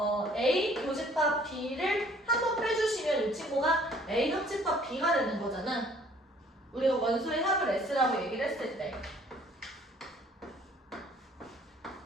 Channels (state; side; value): normal; both; correlation 0.57